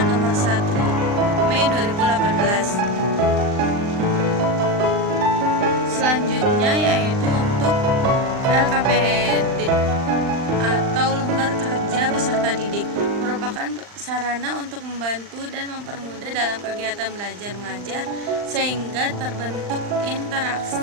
nomor 1 Mei 2018. Selanjutnya yaitu untuk LKPD atau lembar kerja peserta didik, merupakan sarana untuk membantu dan mempermudah dalam kegiatan belajar mengajar sehingga terbentuk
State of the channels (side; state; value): left; late; 39 ms